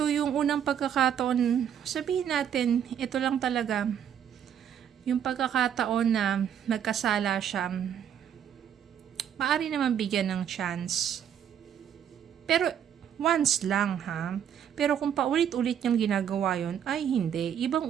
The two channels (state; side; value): quieter; left; 9.1 dB